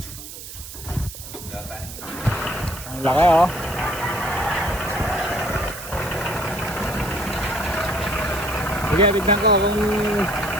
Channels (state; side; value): noise; right; hiss, 12 dB below the sound